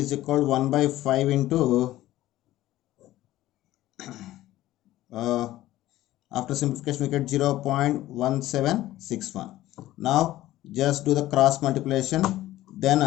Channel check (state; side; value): quieter; right; 15.2 dB